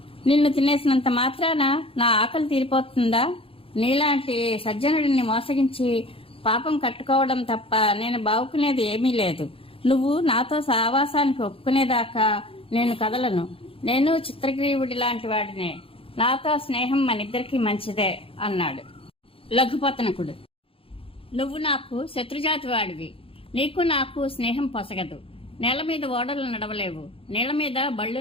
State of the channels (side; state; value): right; late; 0.27 ms